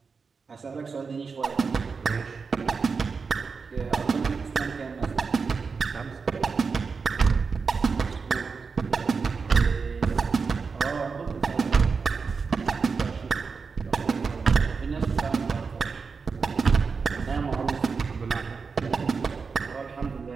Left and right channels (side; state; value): left; quieter; 5.1 dB